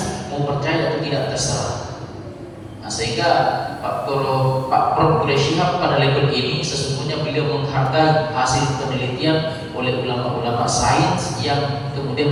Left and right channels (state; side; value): identical; both; correlation 1.00